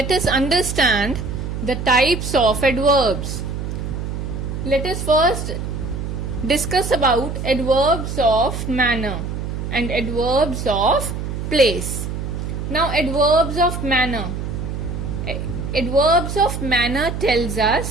us understand the types of adverbs. Let us first discuss about adverbs of manner and adverbs of place. Now adverbs of manner. Adverbs of manner tells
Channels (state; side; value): noise; right; hum, 5 dB below the sound